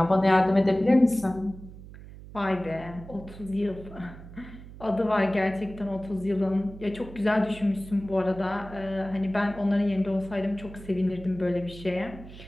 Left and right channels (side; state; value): right; noise; hum, 16 dB below the sound